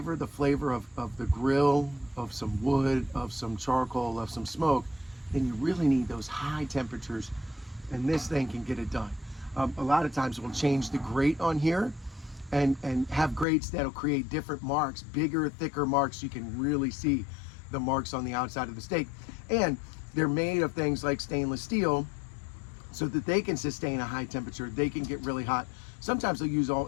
the flavor of the grill, of some wood, of some charcoal, of some smoke, then you really need those high temperatures, and this thing can get it done. A lot of times we'll change the grate on here and have grates that'll create different marks, bigger, thicker marks, so you can really see the marks on the outside of the steak. And they're made of things like stainless steel so that they can sustain a high temperature. They can get really hot. Sometimes they'll use all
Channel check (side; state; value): right; drops out; at 13.5 s